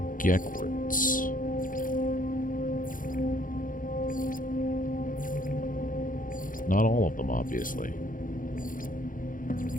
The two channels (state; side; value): late; right; 0.39 ms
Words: Geek words. Not all of them, obviously.